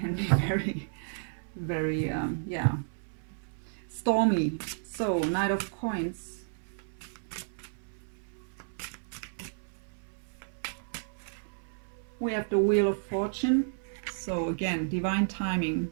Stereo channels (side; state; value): left; silent; 56 dB below the other